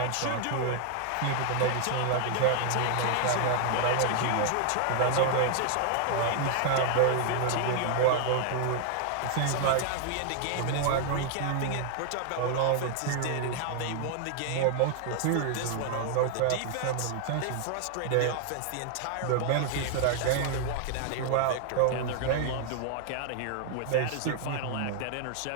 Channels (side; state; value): both; different; correlation 0.00